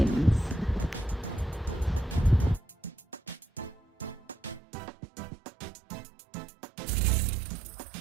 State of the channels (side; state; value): left; drops out; at 4.6 s